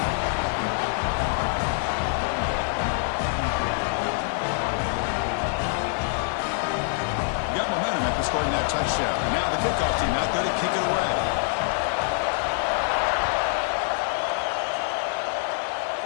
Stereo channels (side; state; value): right; silent; 61 dB below the other